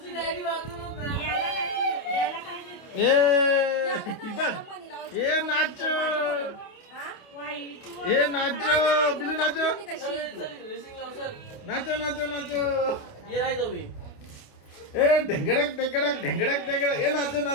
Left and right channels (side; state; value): right; late; 29 ms